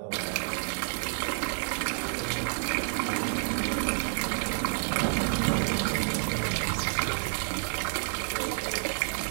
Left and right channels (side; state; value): left; silent; digital silence